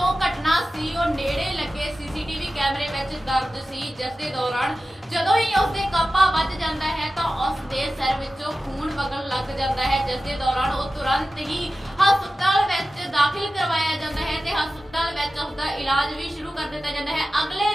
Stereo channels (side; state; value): both; normal; correlation 0.94